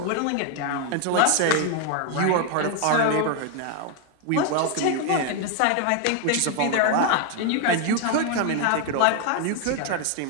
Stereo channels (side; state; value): both; different; correlation 0.01